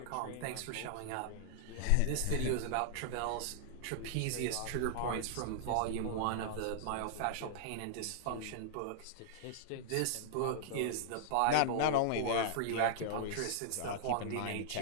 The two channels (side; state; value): both; different; correlation -0.01